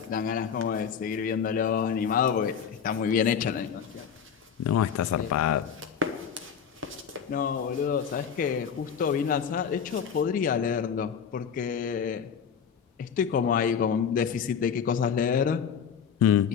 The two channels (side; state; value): right; quieter; 7.3 dB